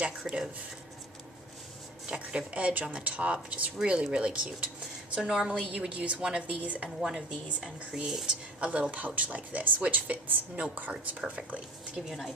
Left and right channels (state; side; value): normal; both; correlation 0.43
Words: edge on the top, just really, really cute. So normally you would use one of these and create a little pouch like this, which fits note cards perfectly, to give you an